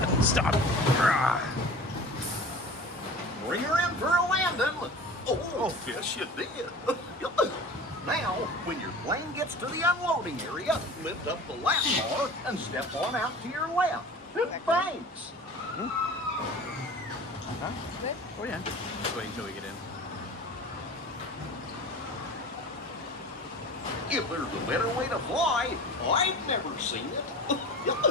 stop. Bring her in for a landing. Oh, yes, you did. Now, when your plane gets to the unloading area, lift up the lap bar and step on out to your left. Thanks. Huh? Good. Oh yeah. Just wait until we get in. If there's a better way to fly, I've never seen it.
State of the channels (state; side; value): normal; both; correlation 0.38